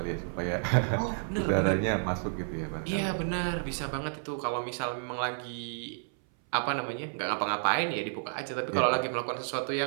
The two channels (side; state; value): left; silent; 57 dB below the other